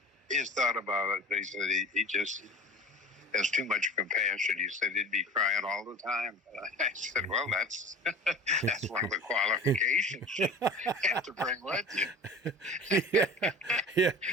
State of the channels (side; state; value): both; normal; correlation 0.38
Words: he's thought about it, but he said he just has too much compassion. He said he'd be crying all the time. I said, well, that's one of the qualifications you have to bring with you.